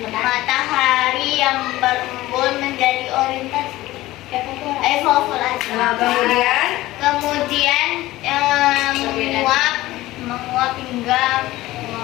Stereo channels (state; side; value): quieter; right; 17.2 dB